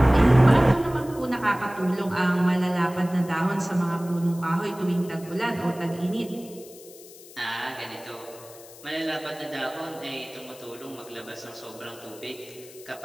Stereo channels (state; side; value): noise; left; hiss, 20 dB below the sound